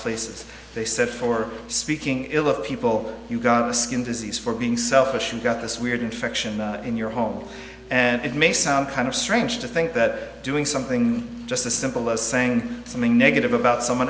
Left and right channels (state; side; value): identical; both; correlation 1.00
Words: They said for speaking ill of people, you got a skin disease. For being selfish, you got this weird infection in your home. And it may sound kind of strange to think that doing something just as simple as saying something negative about someone